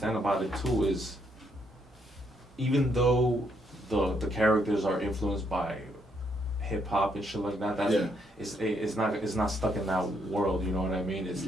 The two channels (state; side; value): normal; both; correlation 0.74